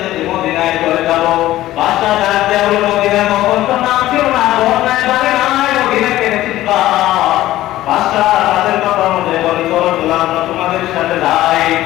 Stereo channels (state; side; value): quieter; right; 15.1 dB